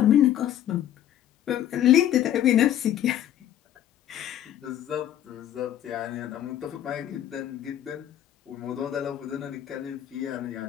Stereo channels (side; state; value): right; quieter; 11.3 dB